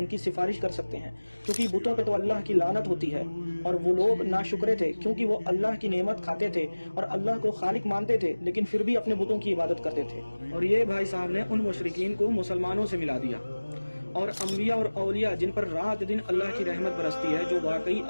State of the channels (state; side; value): inverted; both; correlation -1.00